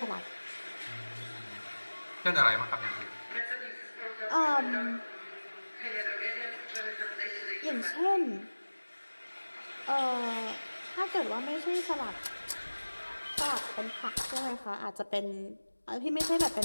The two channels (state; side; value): inverted; both; correlation -1.00